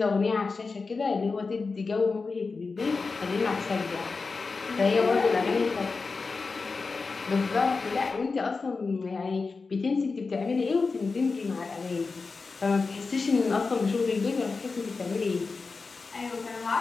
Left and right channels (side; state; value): right; quieter; 4.3 dB